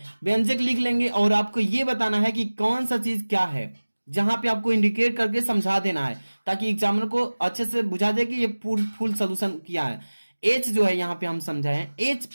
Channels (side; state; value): both; inverted; correlation -1.00